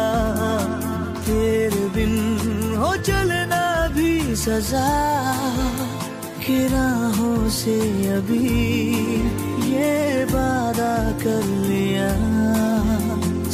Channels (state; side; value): identical; both; correlation 1.00